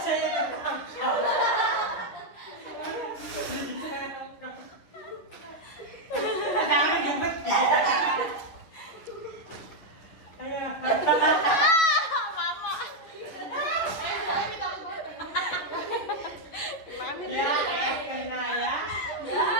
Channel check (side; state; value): right; late; 11 ms